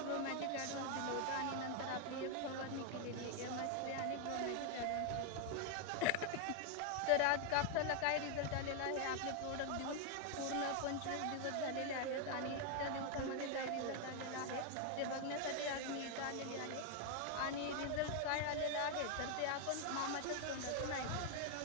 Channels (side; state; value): both; different; correlation 0.01